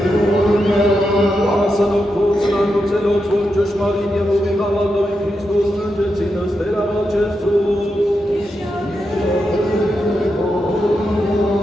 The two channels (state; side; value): normal; both; correlation 0.86